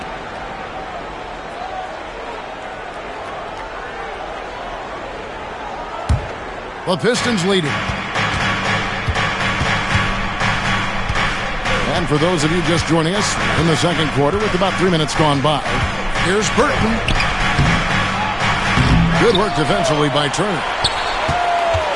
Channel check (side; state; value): both; identical; correlation 1.00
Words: The Pistons leading. And for those of you just joining us in the second quarter with about 3 minutes gone by, here's Burton. Good work defensively by Turner.